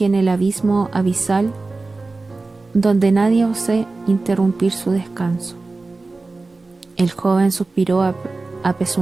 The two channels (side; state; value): left; quieter; 3.5 dB